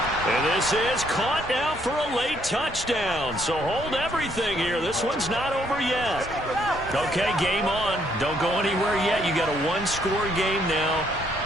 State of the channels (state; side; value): normal; both; correlation 0.70